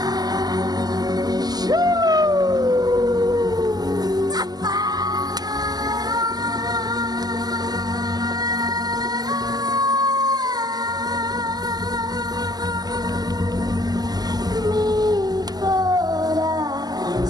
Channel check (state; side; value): late; left; 0.19 ms